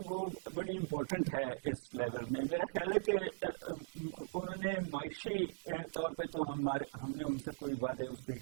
وہ بڑی امپورٹنٹ ہے اس لیول میں. میرا خیال ہے کہ انہوں نے معاشی طور پہ تو ہم نے ان سے کوئی وعدے اس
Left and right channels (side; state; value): left; silent; digital silence